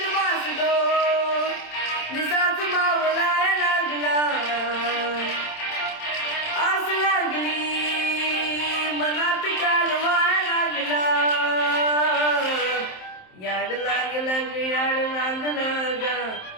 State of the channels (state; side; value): late; right; 27 ms